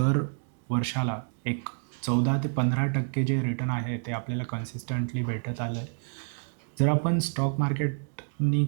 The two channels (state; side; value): silent; left; digital silence